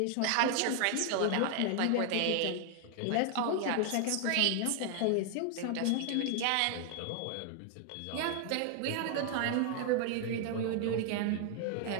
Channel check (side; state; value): both; different; correlation 0.00